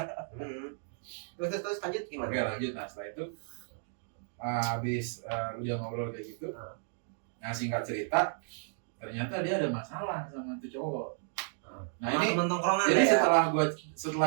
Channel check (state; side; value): silent; left; digital silence